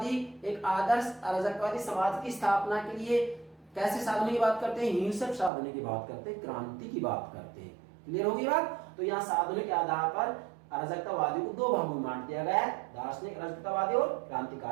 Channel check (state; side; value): drops out; left; at 5.5 s